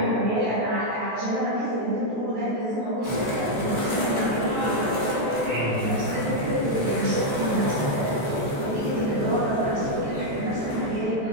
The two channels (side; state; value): left; late; 14 ms